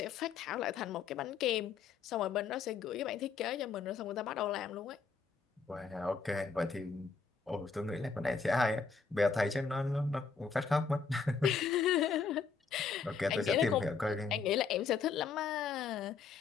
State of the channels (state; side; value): quieter; right; 5.3 dB